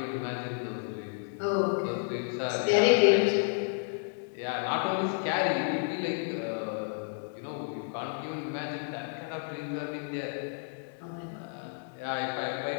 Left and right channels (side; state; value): right; silent; digital silence